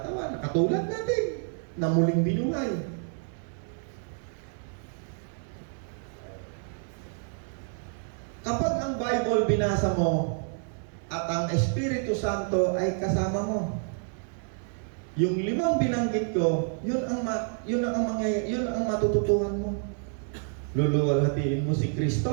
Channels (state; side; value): silent; left; 55 dB below the other